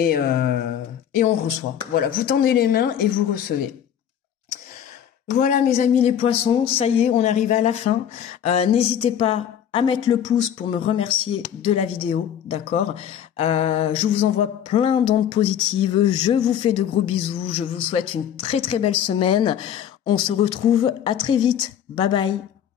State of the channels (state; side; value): quieter; right; 9.4 dB